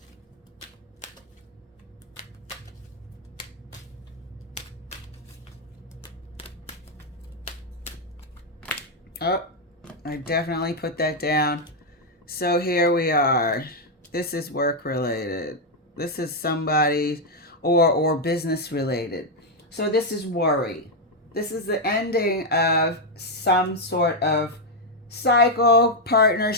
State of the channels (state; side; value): normal; both; correlation 0.01